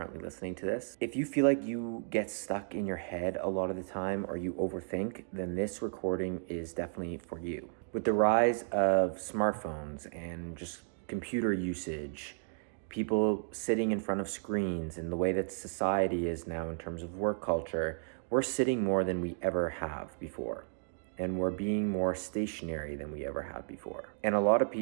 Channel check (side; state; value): left; silent; digital silence